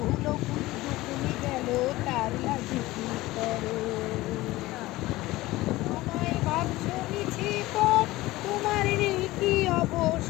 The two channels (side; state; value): right; quieter; 18.5 dB